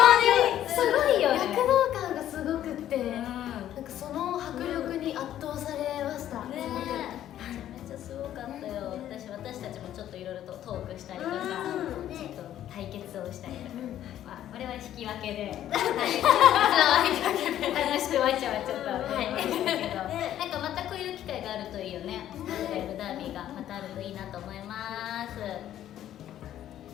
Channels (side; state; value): right; quieter; 11.8 dB